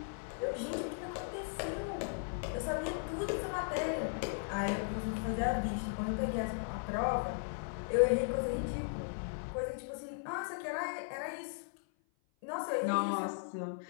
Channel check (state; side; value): silent; right; 53 dB below the other